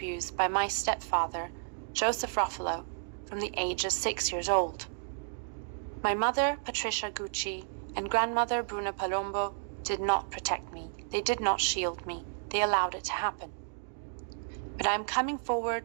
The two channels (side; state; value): left; silent; digital silence